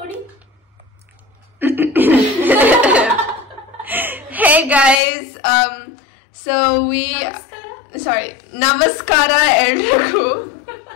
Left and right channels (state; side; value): drops out; right; at 5.0 s